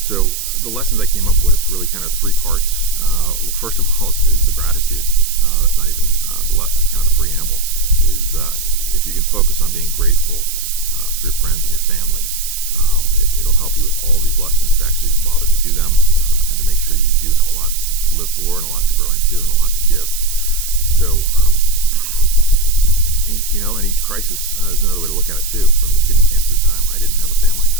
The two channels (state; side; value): noise; right; hiss, 7 dB below the sound